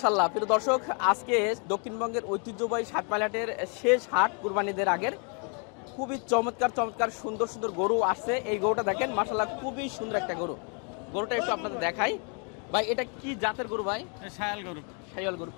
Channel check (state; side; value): quieter; right; 38.1 dB